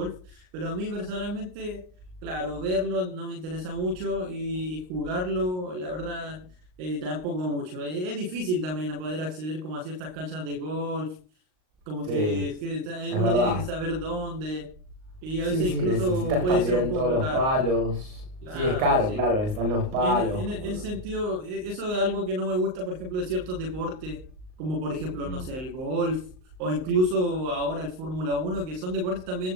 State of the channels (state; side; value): late; left; 38 ms